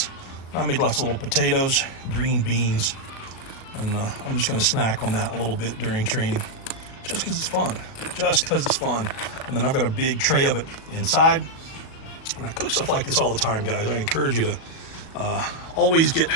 I made lots of little potatoes, green beans, and I'm just gonna snack on that a little bit during training, just because it's fun. And then I've got a big tray of it inside. And I cook stuff like this all the time, guys. I encourage you to always get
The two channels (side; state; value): right; late; 37 ms